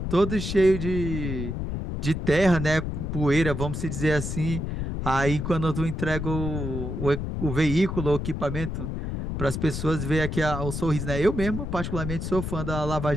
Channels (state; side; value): noise; left; rumble, 4 dB below the sound